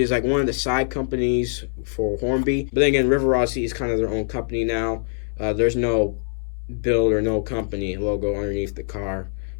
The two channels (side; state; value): right; silent; 63 dB below the other